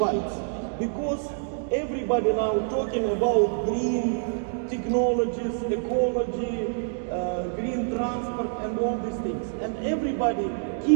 Because everybody now talking about green technologies, ecology, green transport and all these things. And everybody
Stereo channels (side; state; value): left; silent; digital silence